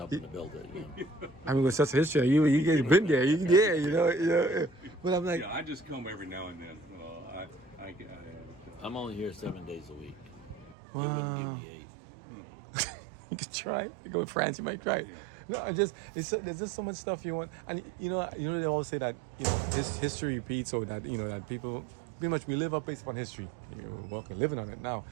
to build it. I mean, with such a history, you've been there. You know. But I'm like, Yeah, I just come every now and then. I'm only here 7 days a week. They wouldn't give me 8. you could try. You go to France, you might try it. No, there's just so much stuff you want, and they always say that this history repeats, or that that people pretty much we live up based upon history. We're living on it now.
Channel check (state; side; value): drops out; left; at 10.8 s